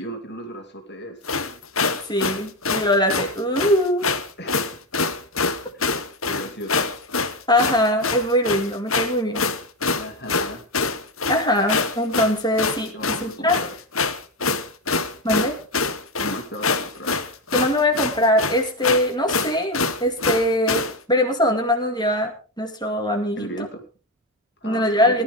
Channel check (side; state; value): both; normal; correlation 0.13